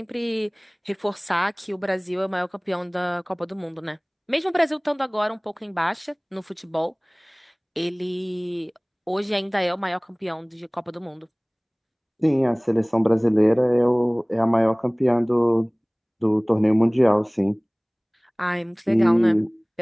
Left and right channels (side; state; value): both; identical; correlation 1.00